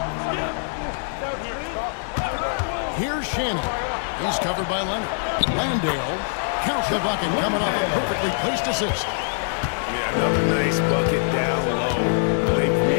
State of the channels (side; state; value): right; silent; digital silence